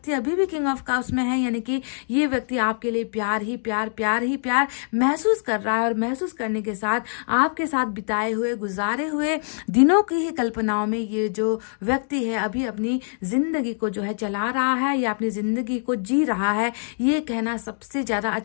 अभी भी किंग ऑफ कप्स में है, यानी कि ये व्यक्ति आपके लिए प्यार ही प्यार, प्यार ही प्यार महसूस कर रहा है, और महसूस करने के साथ आपके साथ बिताए हुए, गुजारे हुए दिनों की ही कल्पनाओं में ये जो व्यक्ति है अभी अपनी जिंदगी को जो है चला रहा है या अपनी जिंदगी को जी रहा है। ये कहना सबसे ज्यादा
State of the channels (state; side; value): silent; right; digital silence